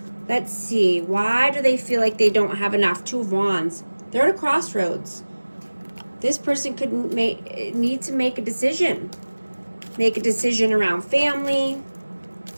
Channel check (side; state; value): both; inverted; correlation -1.00